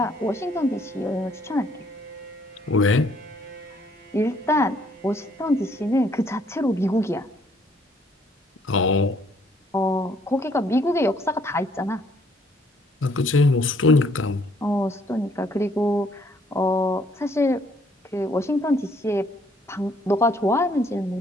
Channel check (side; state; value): both; normal; correlation 0.65